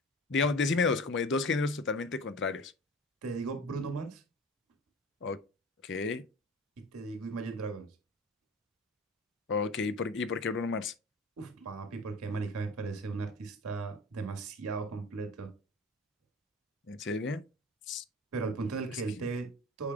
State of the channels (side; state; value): both; normal; correlation 0.38